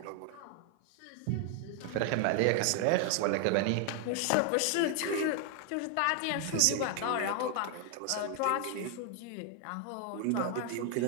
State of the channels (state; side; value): different; both; correlation 0.00